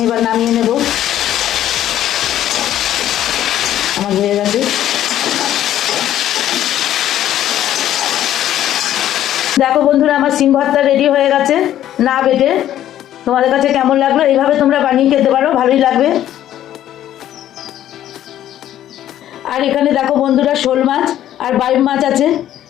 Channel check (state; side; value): quieter; right; 12.0 dB